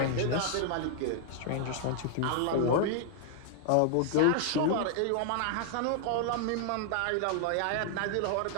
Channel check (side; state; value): both; different; correlation 0.00